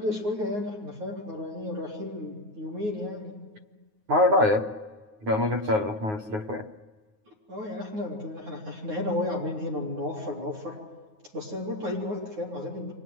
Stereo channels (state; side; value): late; left; 9.5 ms